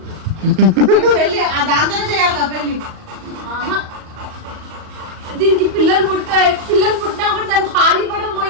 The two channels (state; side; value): late; left; 38 ms